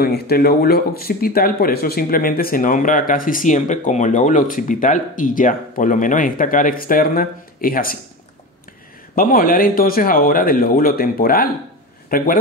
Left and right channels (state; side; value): normal; both; correlation 0.26